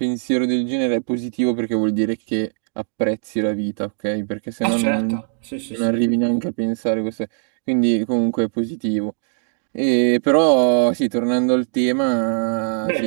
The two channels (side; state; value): left; silent; digital silence